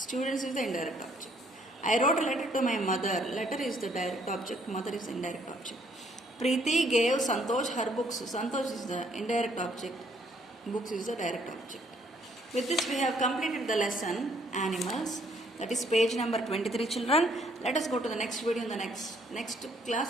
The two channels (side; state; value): both; normal; correlation 0.66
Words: is the indirect object. I wrote a letter to my mother. Letter is the direct object. Mother is the indirect object. Preeti gave Santosh her books. Santosh is the indirect object. Books is the direct object. With this we have completed the lesson animals. That is page number 23, children. Let us go to the next video in the next